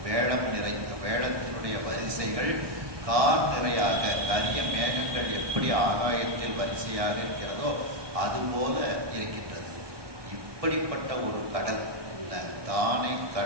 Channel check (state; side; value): late; left; 1.6 ms